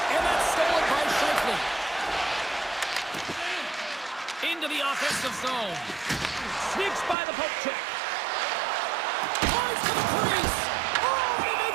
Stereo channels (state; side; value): drops out; left; at 7.2 s